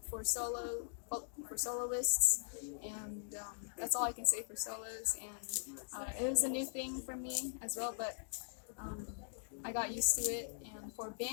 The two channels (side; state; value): right; silent; digital silence